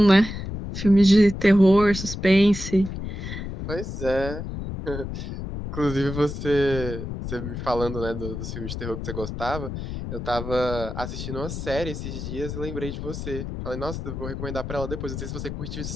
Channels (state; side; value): noise; left; rumble, 7 dB below the sound